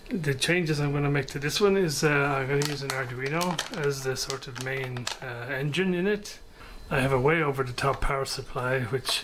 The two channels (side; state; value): both; identical; correlation 1.00